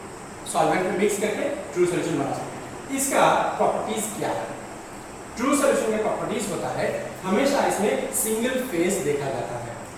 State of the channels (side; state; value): both; identical; correlation 1.00